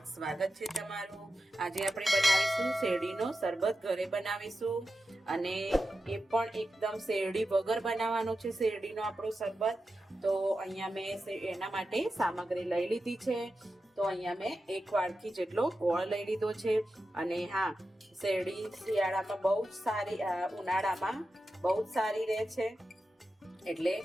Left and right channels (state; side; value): normal; both; correlation 0.91